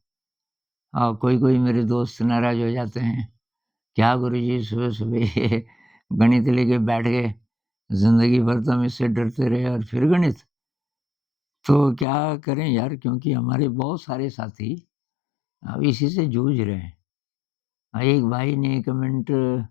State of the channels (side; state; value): right; drops out; at 12.1 s